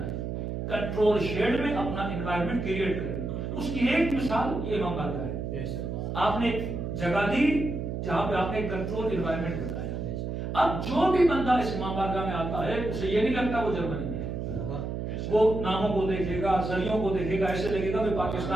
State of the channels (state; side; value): noise; right; hum, 4 dB below the sound